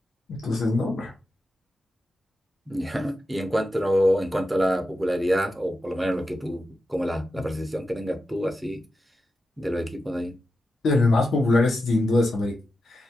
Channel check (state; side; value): normal; both; correlation 0.90